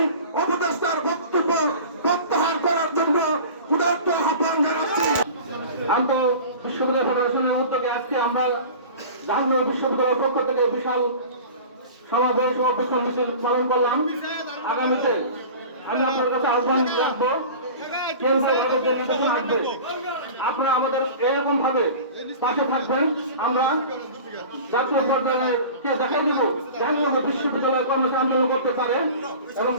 উপদেষ্টার বক্তব্য প্রত্যাহার করার জন্য উদাত্ত আহ্বান জানাচ্ছি। আন্তঃ বিশ্ববিদ্যালয় ফেডারেশনের উদ্যোগে আজকে আমরা জাহাঙ্গীরনগর বিশ্ববিদ্যালয়ের পক্ষ থেকে বিশাল সমাবেশ ও বিক্ষোভ মিছিল পালন করলাম। আগামীতে আমি আপনার কাছে আহ্বান রাখবো, কেন্দ্রীয়ভাবে যে নির্বাচন আসবে আপনারা আমাদের এরকম ভাবে পাশে থাকবেন। আমরা জাতীয় পর্যায়ে কে দেখাই দেবো জাহাঙ্গীরনগর বিশ্ববিদ্যালয় কর্মচারী আন্দোলন করতে পারে এবং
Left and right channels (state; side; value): inverted; both; correlation -0.38